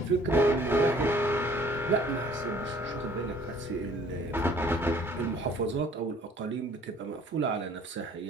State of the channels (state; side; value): normal; both; correlation 0.55